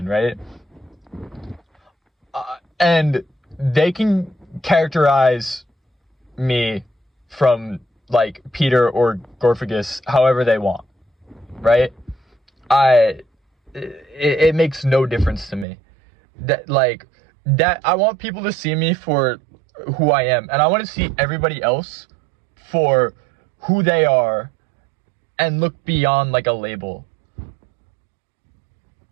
right? And they can characterize me from like Peter or Gorfagus however they want, right? It makes no difference to me. That I want people to see me for who I am, and I want to see everybody else for who they are and look beyond like a label.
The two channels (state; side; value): drops out; left; at 15.7 s